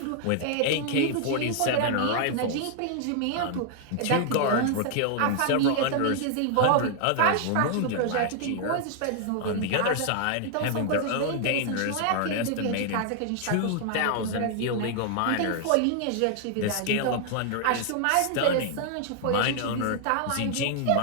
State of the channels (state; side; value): different; both; correlation 0.00